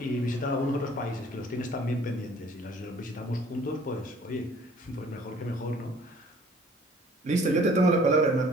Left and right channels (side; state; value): both; normal; correlation 0.54